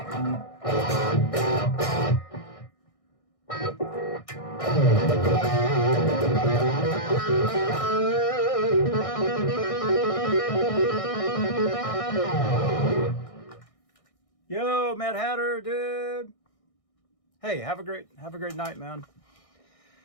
Yo, Mad Hatter, dude. Hey, have a great night, man.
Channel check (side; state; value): right; late; 1.6 ms